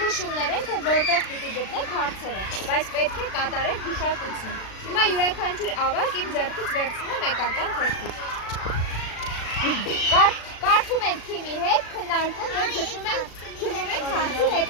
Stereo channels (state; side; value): late; right; 36 ms